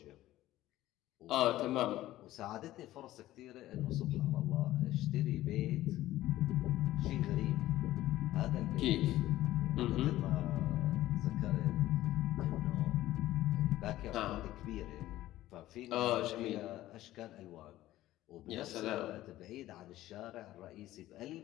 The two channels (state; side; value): quieter; right; 15.2 dB